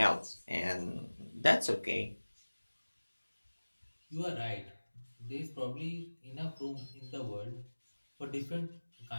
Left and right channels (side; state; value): both; inverted; correlation -1.00